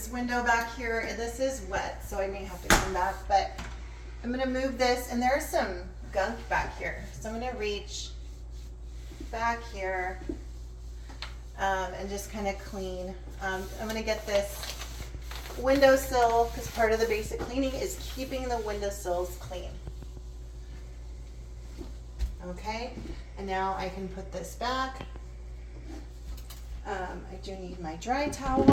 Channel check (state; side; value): identical; both; correlation 1.00